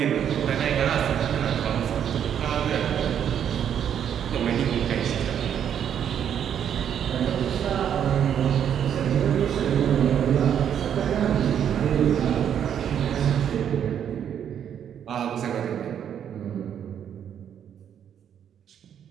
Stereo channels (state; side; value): quieter; left; 9.0 dB